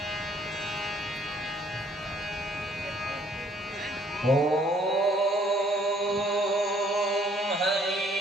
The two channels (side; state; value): both; normal; correlation 0.62